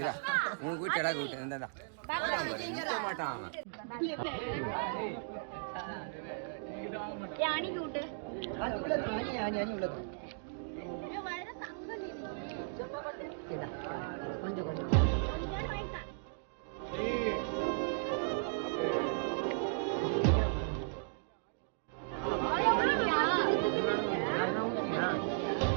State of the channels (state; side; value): silent; left; digital silence